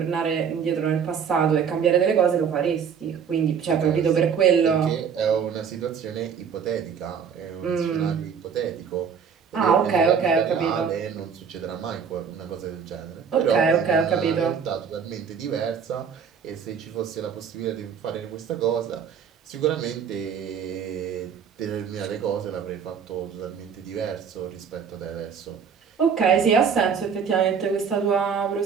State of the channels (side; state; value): left; quieter; 7.0 dB